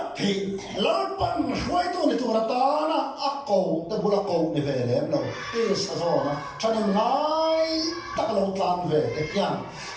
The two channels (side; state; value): both; identical; correlation 1.00